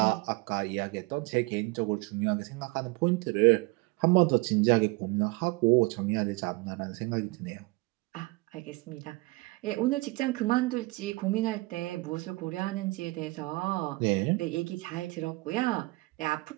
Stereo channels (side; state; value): left; quieter; 23.5 dB